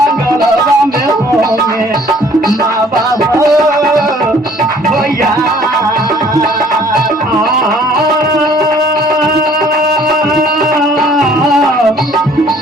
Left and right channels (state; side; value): normal; both; correlation 0.57